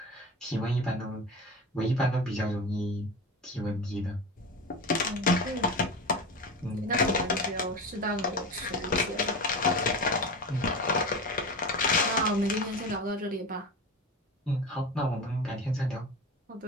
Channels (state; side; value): normal; both; correlation 0.27